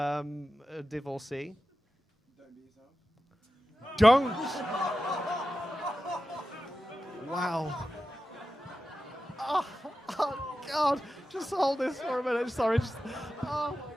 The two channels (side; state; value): both; normal; correlation 0.93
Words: divorcee? Don't be yourself. Don't. Wow. Oh, God. Just hold this for a minute. Sorry. Just, oh, my